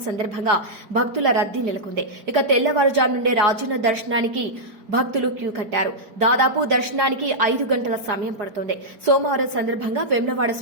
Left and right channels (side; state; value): left; late; 4.8 ms